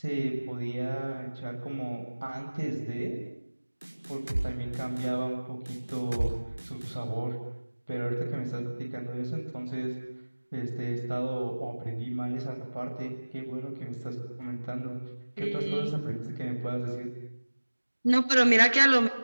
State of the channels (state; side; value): inverted; both; correlation -1.00